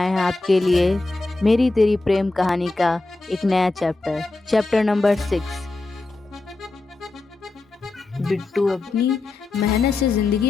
हैं आपके लिए मेरी तेरी प्रेम कहानी का एक नया चैप्टर नंबर 6। बिट्टू अपनी मेहनत से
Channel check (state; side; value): quieter; right; 3.2 dB